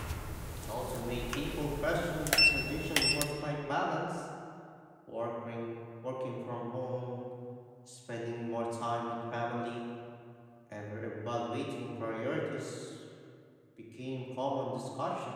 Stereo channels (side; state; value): both; identical; correlation 1.00